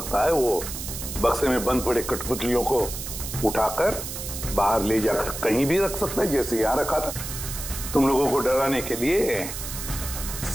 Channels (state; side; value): noise; right; hiss, 7 dB below the sound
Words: है वो बक्से में बंद पड़े कठपुतलियों को उठाकर बाहर ले जाकर कहीं भी रख सकता है, जैसे यहाँ रखा था तुम लोगों को डराने के लिए।